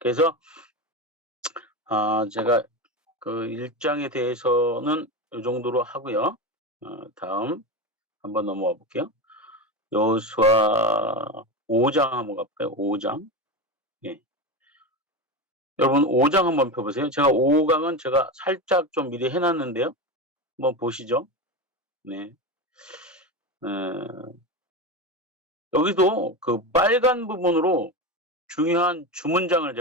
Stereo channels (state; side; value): normal; both; correlation 0.20